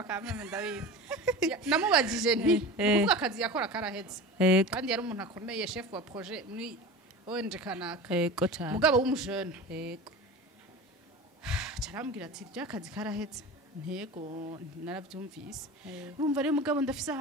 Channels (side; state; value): both; normal; correlation 0.33